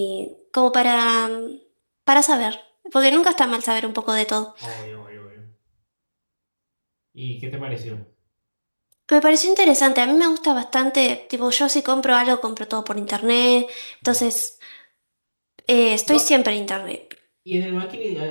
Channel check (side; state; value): both; inverted; correlation -1.00